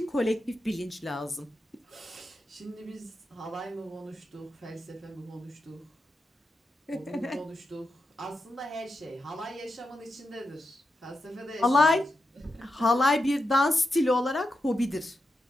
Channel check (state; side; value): normal; both; correlation 0.88